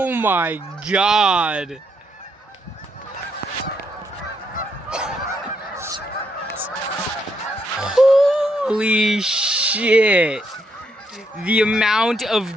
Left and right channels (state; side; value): normal; both; correlation 0.76